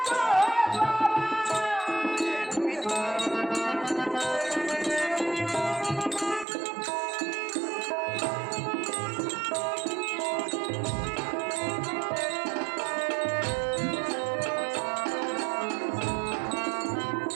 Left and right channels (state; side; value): drops out; left; at 6.5 s